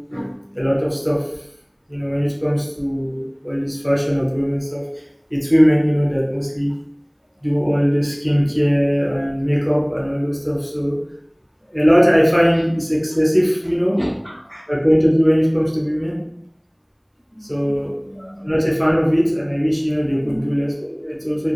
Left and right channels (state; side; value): identical; both; correlation 1.00